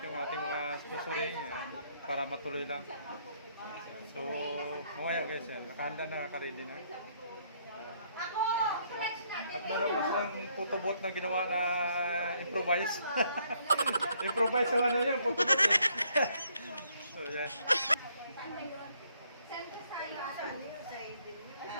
yung ating mga sponsoring para matuloy lang. So mamaya guys, nakahanda na, naka-ready na. At meron pa silang photobot na ginawa na improvise. Improvise naman na yun, photobot eh. So yan.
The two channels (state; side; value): inverted; both; correlation -0.68